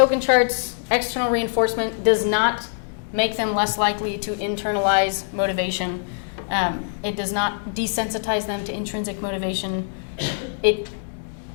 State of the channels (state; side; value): silent; right; digital silence